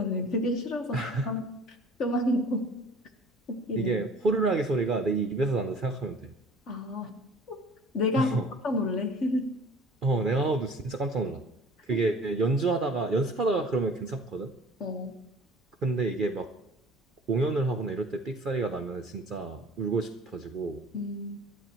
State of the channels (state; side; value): normal; both; correlation 0.48